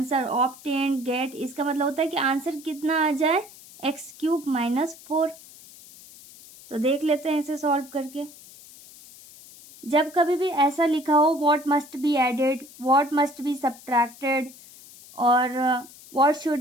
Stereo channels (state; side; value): noise; left; hiss, 20 dB below the sound